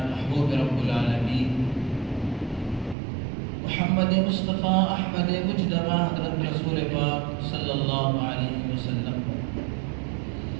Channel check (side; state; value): left; drops out; at 3.0 s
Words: محبوب رب العالمین محمد مصطفیٰ احمد مجتبیٰ حضرت رسول پاک صلی اللہ علیہ وسلم